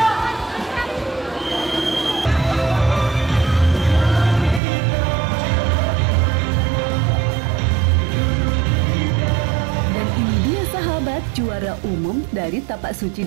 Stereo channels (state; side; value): drops out; left; at 4.6 s